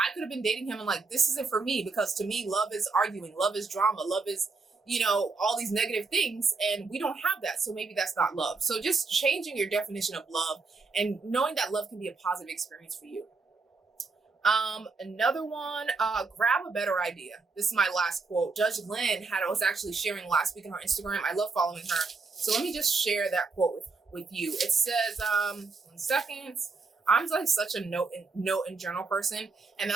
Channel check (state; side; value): quieter; left; 4.2 dB